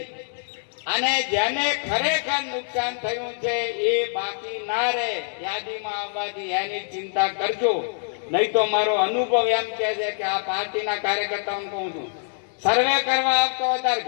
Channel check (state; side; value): silent; right; digital silence